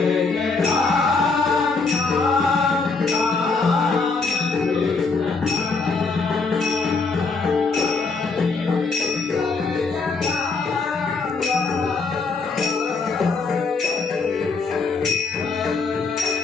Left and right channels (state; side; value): quieter; right; 4.3 dB